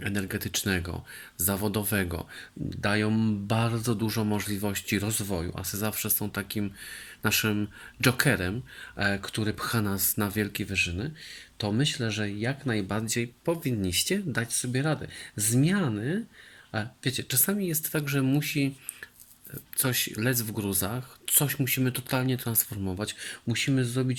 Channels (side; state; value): both; identical; correlation 1.00